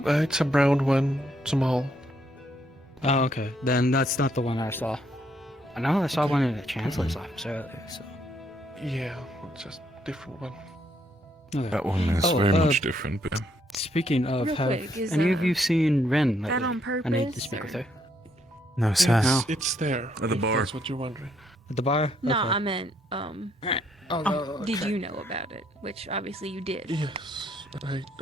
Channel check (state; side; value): normal; both; correlation 0.72